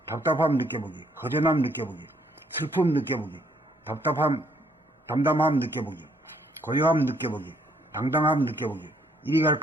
답답함 느껴보기, 허전함 느껴보기, 슬픔 느껴보기, 담담함 느껴보기, 고요함 느껴보기, 당당함 느껴보기, 이리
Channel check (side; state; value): both; normal; correlation 0.68